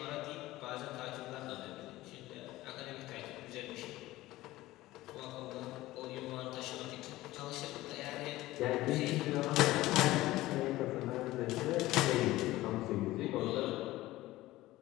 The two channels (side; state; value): right; quieter; 17.2 dB